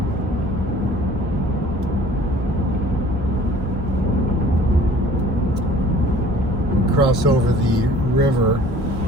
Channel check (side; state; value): both; normal; correlation 0.51